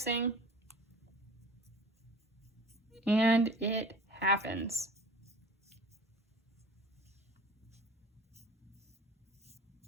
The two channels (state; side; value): normal; both; correlation 0.43